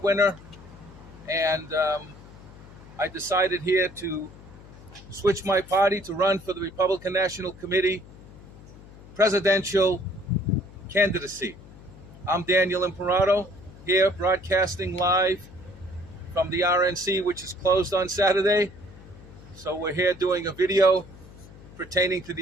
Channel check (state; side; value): noise; left; hum, 19 dB below the sound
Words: winner. And I decided here to switch my party to run for the Republican National Committee presidential candidacy. I'm Daniel Imperato, here broadcasting live from the RNC, which is closed on Saturday. So we're here doing a video pertaining to